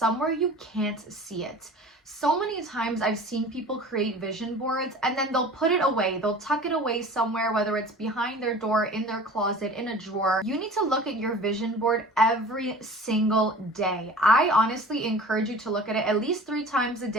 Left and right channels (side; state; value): both; normal; correlation 0.41